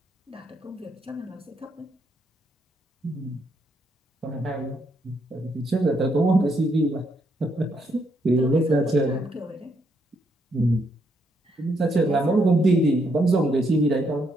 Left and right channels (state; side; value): normal; both; correlation 0.76